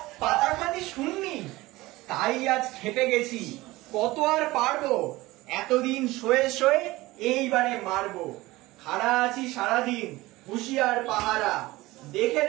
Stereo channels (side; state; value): left; quieter; 19.4 dB